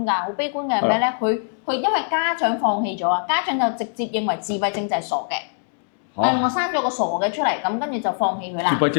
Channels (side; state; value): right; silent; digital silence